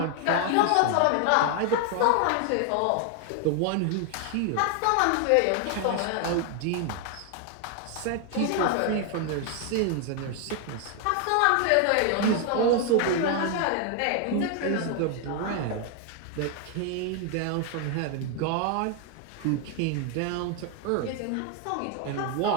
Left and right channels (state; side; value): different; both; correlation 0.01